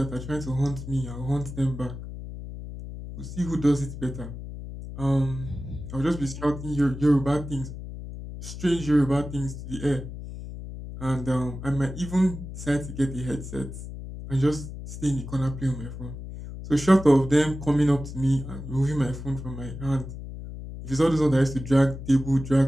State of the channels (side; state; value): left; noise; hum, 10 dB below the sound